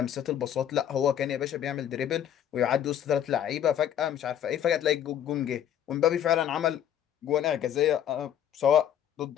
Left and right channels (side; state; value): right; quieter; 10.0 dB